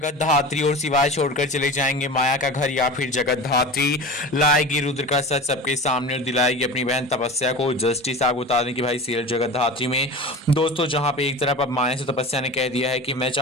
धात्री और शिवाय छोड़कर चले जाएंगे माया का घर, या फिर जगत धात्री लाएगी रुद्र का सच सबके सामने और दिलाएगी अपनी बहन तपस्या को जस्टिस। आप बता दें कि भाई सीरियल जगत धात्री में दोस्तों जहां पे एक तरफ अब माया से तपस्या ने कह दिया है कि मैं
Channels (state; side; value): normal; both; correlation 0.33